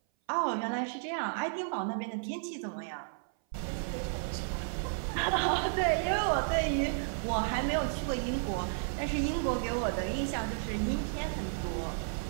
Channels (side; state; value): left; silent; 56 dB below the other